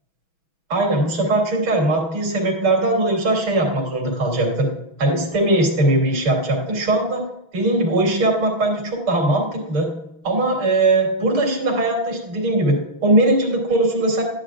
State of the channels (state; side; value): late; left; 6.1 ms